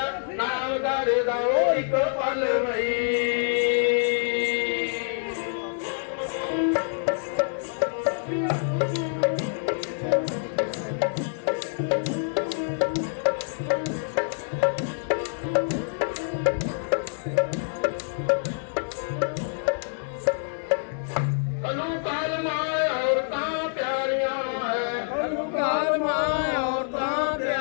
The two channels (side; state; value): right; silent; digital silence